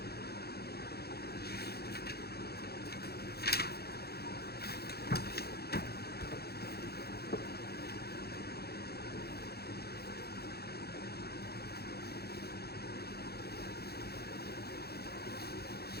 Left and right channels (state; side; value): late; right; 0.46 ms